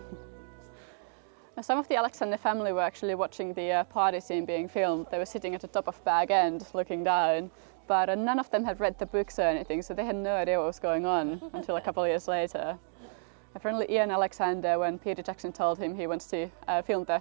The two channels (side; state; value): left; silent; digital silence